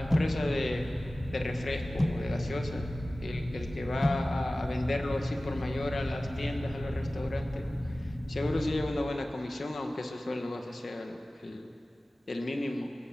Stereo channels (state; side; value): normal; both; correlation 0.97